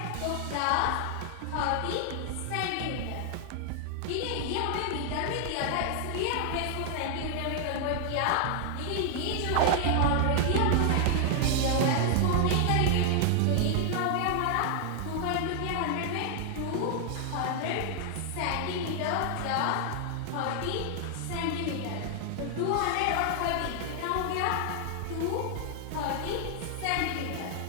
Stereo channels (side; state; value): both; different; correlation 0.00